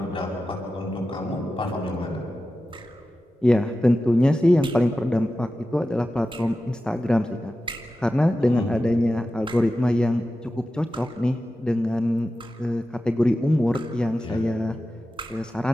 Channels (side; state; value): both; normal; correlation 0.93